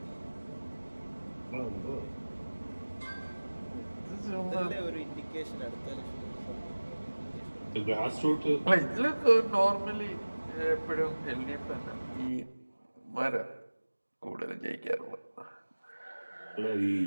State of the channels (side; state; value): both; inverted; correlation -1.00